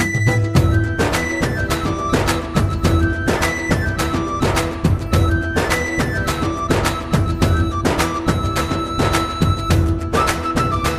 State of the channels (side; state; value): both; identical; correlation 1.00